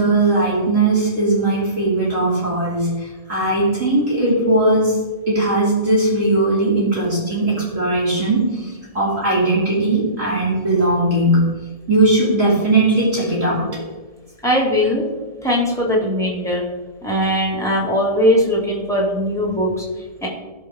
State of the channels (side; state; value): left; late; 1.7 ms